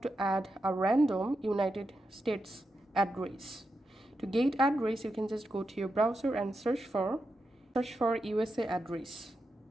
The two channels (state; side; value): normal; both; correlation 0.87